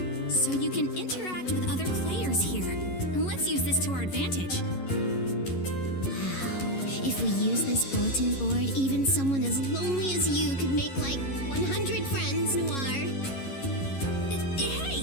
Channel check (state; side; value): late; right; 11 ms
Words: So you can interact with other players here. Let's use this to our advantage. If we use this bulletin board, even someone as lonely as you could make like 100 friends, Noir.